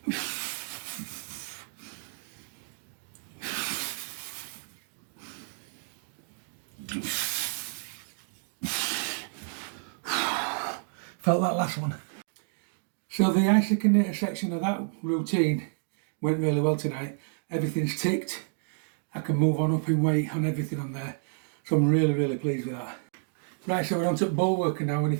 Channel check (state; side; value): silent; left; digital silence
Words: Felt that last one. So the isokinator section of that routine went really well tonight. Everything's ticked. I can move on up in weight on everything on there. So I'm really pleased with that. Right, so we're on to bullworker now, and